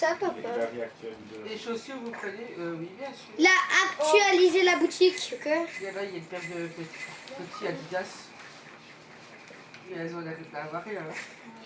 papa? La vie actuelle de... Les chaussures, vous prenez oui, bien sûr. Là, actualiser la boutique, ok? Là, il y a une paire de petits Adidas. Et elles ont la avare là.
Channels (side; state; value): both; identical; correlation 1.00